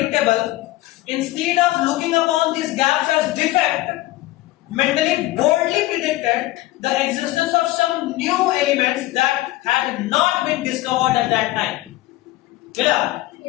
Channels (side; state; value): right; quieter; 17.6 dB